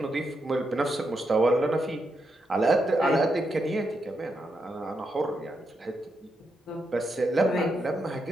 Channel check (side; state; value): both; normal; correlation 0.83